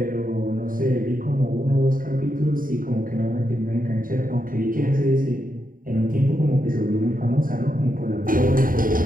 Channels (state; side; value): late; left; 0.41 ms